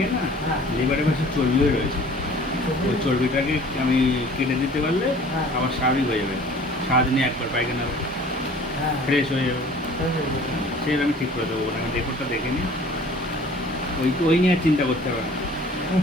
না, হ্যাঁ। লিভারের পাশে চর্বিও রয়েছে, ওই চর্বিটাকে আমি কেটে দিতে পারলে হ্যাঁ। আবার স্বাভাবিক হয়ে যাবে, সারাদিনে একবার পায়খানা হবে, হ্যাঁ ফ্রেশ হয়ে যাবে। হয়ে যাবে। সেটা আমি ঠিক করে দেবো, ওখানে রেকর্ডটা দেখে নিই, ওই নিয়ে আর চিন্তা করতে হবে না।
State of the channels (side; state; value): both; normal; correlation 0.49